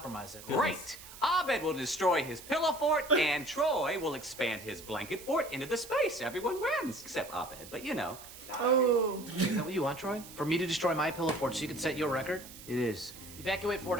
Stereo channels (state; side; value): noise; right; hiss, 16 dB below the sound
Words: it. Great. Abed will destroy his pillow fort, and Troy will expand his blanket fort into the space. Everyone wins, except Abed, but you know. Oh. Is that what you want, Troy? For me to destroy my pillow fort so you can set your record? It is. Evacuate Fort